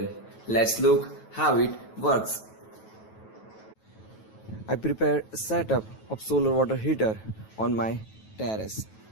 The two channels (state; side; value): late; right; 9.2 ms